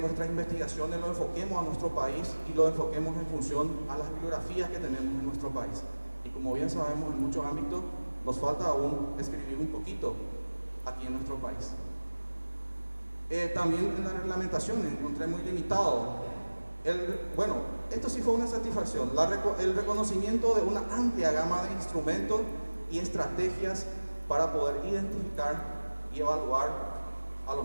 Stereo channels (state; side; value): inverted; both; correlation -1.00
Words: investigaciones lo enfoquemos a nuestro país y lo enfoquemos en función a las bibliografías que tenemos en nuestro país. Y como bien sabemos, en muchos ámbitos nos falta aún escribir un poquito aquí en nuestro país. También en la reglamentación encontré muy limitado. Bueno, esto sí fue una satisfacción, el reconocimiento de una amplia gama de instrumentos y estrategias para poder identificar y evaluar a